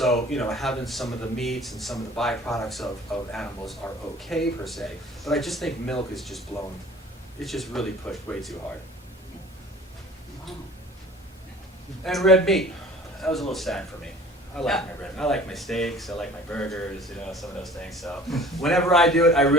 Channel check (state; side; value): normal; both; correlation 0.47